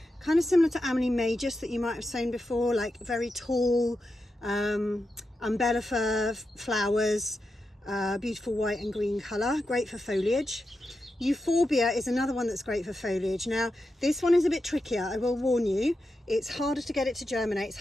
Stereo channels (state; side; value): normal; both; correlation 0.88